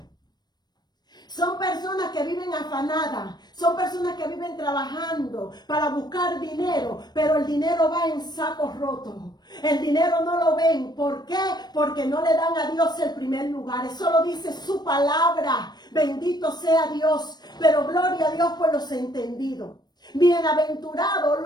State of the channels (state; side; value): late; right; 0.20 ms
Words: Son personas que viven afanadas, son personas que viven trabajando para buscar dinero, pero el dinero va en sacos rotos. El dinero no lo ven. ¿Por qué? Porque no le dan a Dios el primer lugar. Eso lo dice su palabra. Bendito sea Dios. Pero gloria a Dios por los entendidos. Bienaventurados